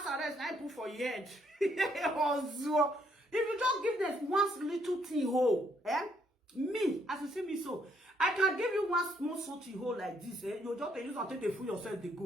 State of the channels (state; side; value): normal; both; correlation 0.71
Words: house arrest, I put for your head. If you just give them one little thing hole, me, as you see me so, I can give you one small salty hole like this, you just use and take the food yourself, they